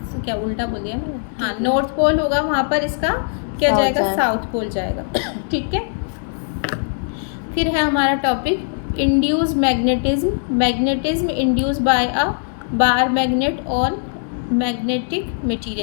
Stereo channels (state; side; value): silent; right; digital silence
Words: क्या उल्टा बोल दिया मैंने? हाँ, नॉर्थ पोल होगा, वहाँ पर इसका क्या जाएगा? साउथ पोल जाएगा, ठीक है। फिर है हमारा topic induce magnetism. Magnetism induce by a bar magnet on magnetic